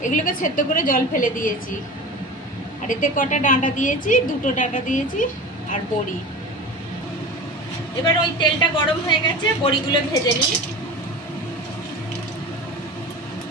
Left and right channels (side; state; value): both; normal; correlation 0.33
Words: এগুলোকে সেদ্ধ করে জল ফেলে দিয়েছি। আর এতে কটা ডাঁটা দিয়েছি, দুটো ডাঁটা দিয়েছি আর বড়ি। এবার ওই তেলটা গরম হয়ে গেছে, বড়িগুলো ভেজে নিই।